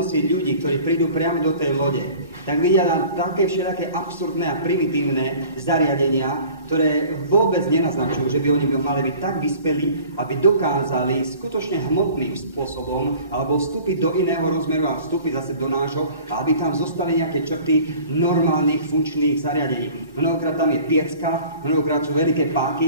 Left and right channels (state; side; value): inverted; both; correlation -0.46